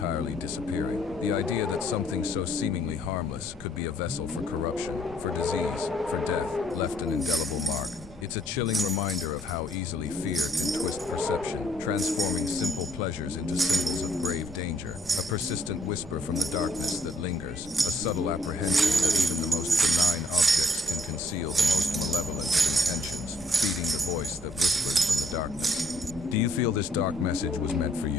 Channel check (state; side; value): noise; left; rumble, 20 dB below the sound